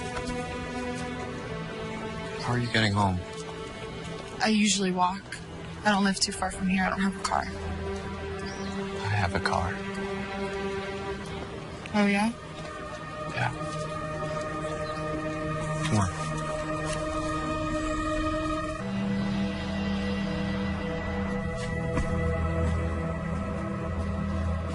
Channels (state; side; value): identical; both; correlation 1.00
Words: How are you getting home? I usually walk. I don't live too far from here. I don't have a car. I have a car. Oh, yeah? Yeah. Come on.